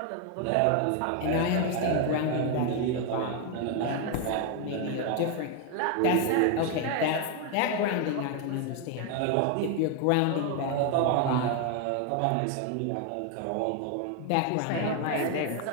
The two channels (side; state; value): both; different; correlation 0.01